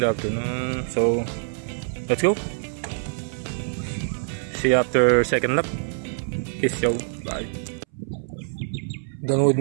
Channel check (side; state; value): left; silent; 61 dB below the other